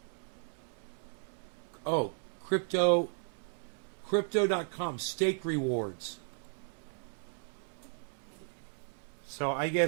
Oh, crypto.com stake rewards. So I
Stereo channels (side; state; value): left; silent; 54 dB below the other